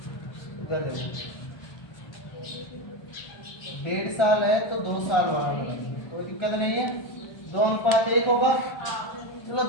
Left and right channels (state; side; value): late; right; 1.3 ms